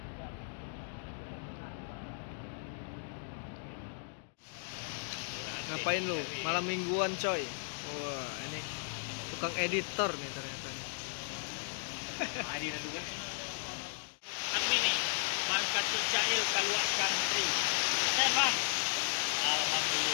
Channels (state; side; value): silent; right; digital silence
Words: Ngapain lu? Malam mingguan coy. Wah, ini tukang editor nih ternyata. Kami nih, Bang Kati Cail Kaluak Country. Sehat bang?